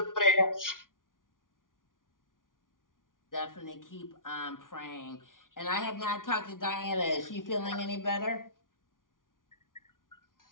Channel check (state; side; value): late; right; 0.89 ms